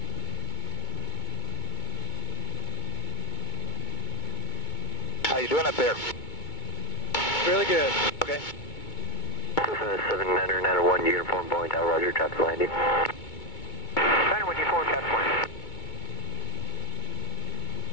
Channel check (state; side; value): late; right; 2.2 ms